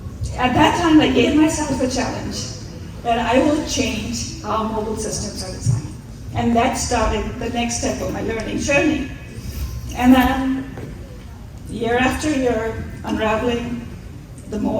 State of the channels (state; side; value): identical; both; correlation 1.00